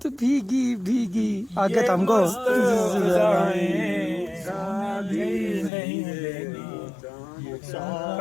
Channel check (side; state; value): right; drops out; at 5.7 s